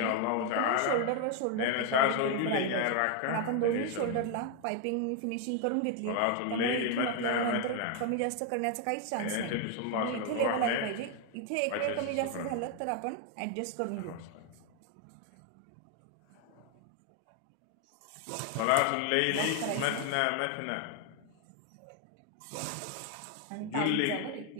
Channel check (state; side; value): different; both; correlation 0.01